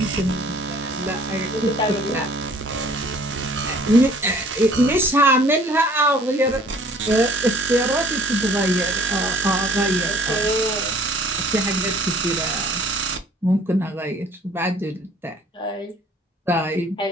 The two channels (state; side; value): normal; both; correlation 0.55